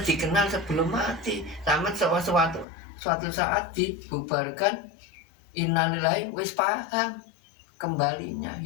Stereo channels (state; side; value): drops out; right; at 2.7 s